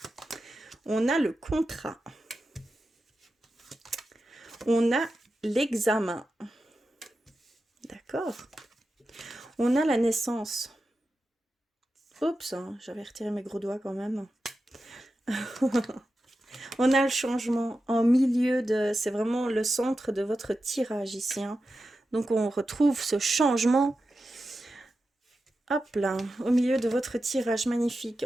On a le contrat. On a l'examen. D'accord. On a la naissance. Oups, hein, j'avais retiré mes gros doigts quand même. On a le changement en milieu de... C'est vraiment le centre de votre tirage ici. Hein. Donc, on retrouve ce changement. Hop là, au milieu de votre tirage magnifique.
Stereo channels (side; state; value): both; normal; correlation 0.91